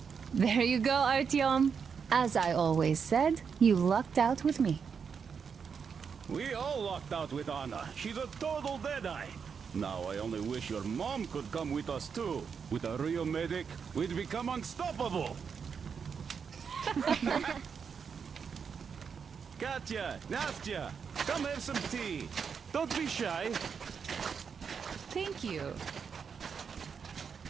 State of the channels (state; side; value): quieter; left; 6.4 dB